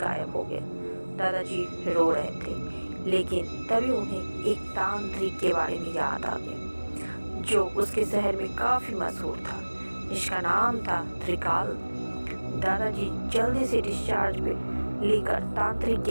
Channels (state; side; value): inverted; both; correlation -1.00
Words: हो गया। दादाजी रो रहे थे, लेकिन तभी उन्हें एक तांत्रिक के बारे में याद आ गया जो उसके शहर में काफ़ी मशहूर था, जिसका नाम था त्रिकाल। दादाजी जल्दी से डिस्चार्ज पे लेकर तांत्रिक